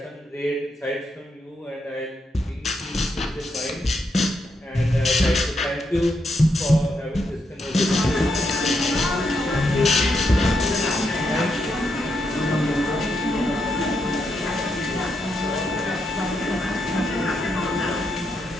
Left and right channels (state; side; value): normal; both; correlation 0.80